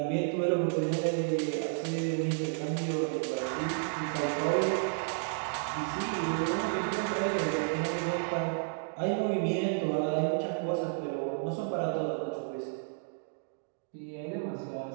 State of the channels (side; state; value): left; silent; digital silence